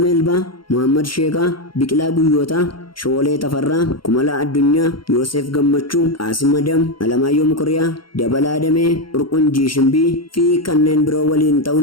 Meelbaa, Muhammad Sheekaa, Biqilaa Guyyootaa, Shoolee Tafarraa, Kumalaa Addunyaa, Yoosef Gammachuu, Qaasim Adam, Alamaayyoo Mukuriyaa, Dabalaa Damee, Urqunjii Shimbii fi kanneen biroo waliin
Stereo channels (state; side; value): late; right; 0.73 ms